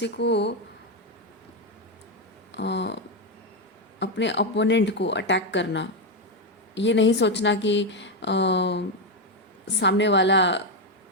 को अ, अपने अपोनेंट को अटैक करना, ये नहीं सोचना कि सामने वाला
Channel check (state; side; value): normal; both; correlation 0.06